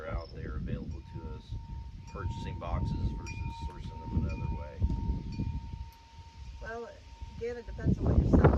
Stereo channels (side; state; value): both; identical; correlation 1.00